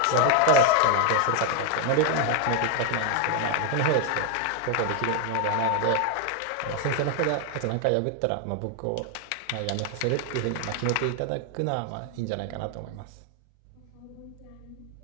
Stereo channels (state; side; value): different; both; correlation 0.01